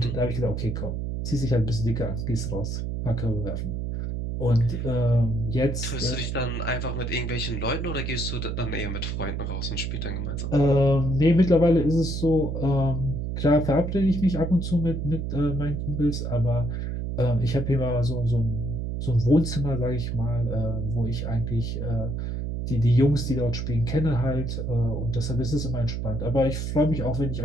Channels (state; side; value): noise; right; hum, 3 dB below the sound